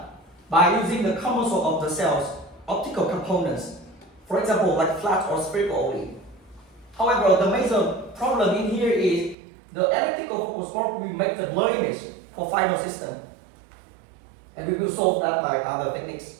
by using the common source of the cell's optical components, for example, like flat or spherical only. However, the major problem in here is the elliptical focus port will make the blur image for final system, and we will solve that by other techniques.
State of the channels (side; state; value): left; drops out; at 9.3 s